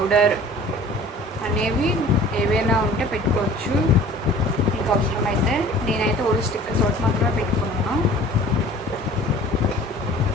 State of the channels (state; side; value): normal; both; correlation 0.46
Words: అనేవి ఏవైనా ఉంటే పెట్టుకోవచ్చు మీకు అవసరమైతే. నేనైతే ఓన్లీ స్టిక్కర్స్ ఒకటి మాత్రమే పెట్టుకున్నాను.